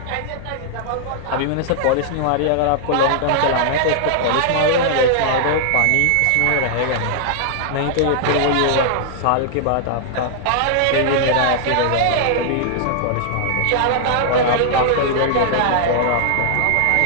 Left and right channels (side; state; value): both; different; correlation -0.01